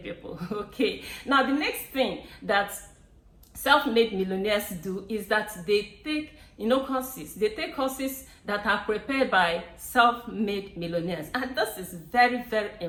Okay, now the next thing that self-made millionaires do is that they take courses. They take courses that are prepared by self-made millionaires, and this is very, very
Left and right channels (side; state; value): both; identical; correlation 1.00